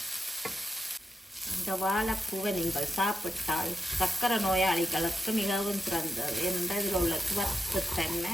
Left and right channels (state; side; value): normal; both; correlation 0.88